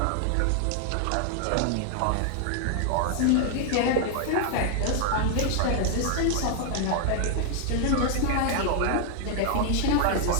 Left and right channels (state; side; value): different; both; correlation 0.00